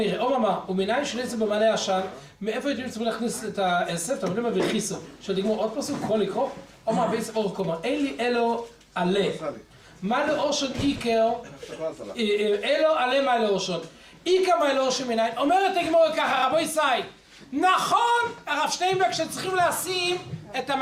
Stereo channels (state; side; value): identical; both; correlation 1.00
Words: אוממה, ומניין של עשב במלא עשן, מאיפה הייתם צריכים להכניס את העשב? אתה מבין מה וכיסו, של תגמור עוד פסוק, יכול לקרוא? אוממה, בעצם אור קומה, אין לי אלו עלה. מה לאושון איקר, אלו עלה מה לאושון. איקר מה לאושון מניין, אומרת הגמורה ככה, רבו ישי, נכון, הרב שטיינברג שצריכים לשים את